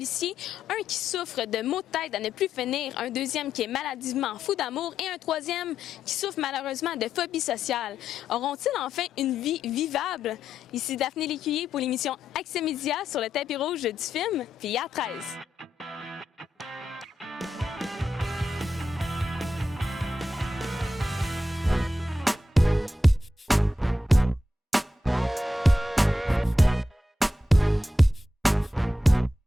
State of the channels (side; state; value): both; normal; correlation 0.85